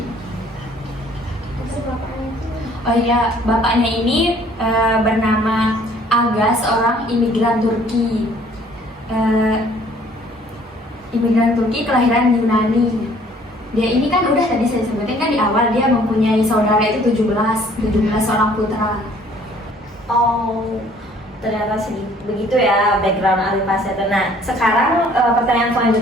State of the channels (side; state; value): both; normal; correlation 0.57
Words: Bapaknya ini bernama Aga, seorang imigran Turki. Imigran Turki kelahiran Yunani. Dia ini kan udah tadi saya sebutin kan di awal, dia mempunyai saudara itu 17 orang putra. Oh, ternyata begitu ya background Ali Pasha itu. Nah, sekarang pertanyaan